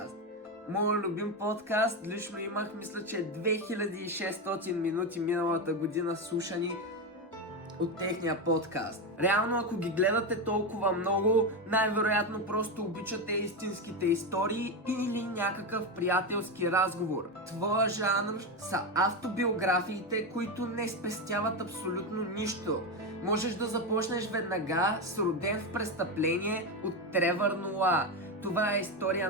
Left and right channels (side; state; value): both; normal; correlation 0.13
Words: Моят любим подкаст, лично имах, мисля, че 2600 минути миналата година слушани от техния подкаст. Реално, ако ги гледате толкова много, най-вероятно просто обичате истинските истории или някакъв приятелски разговор. Твоя жанр са автобиографиите, които не спестяват абсолютно нищо. Можеш да започнеш веднага с Роден в престъпление от Тревър Ноа. Това е история